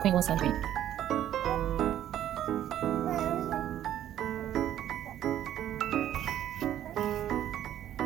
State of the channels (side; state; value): left; quieter; 11.5 dB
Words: one sand bead.